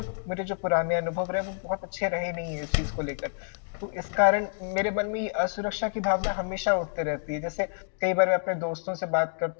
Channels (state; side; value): silent; right; digital silence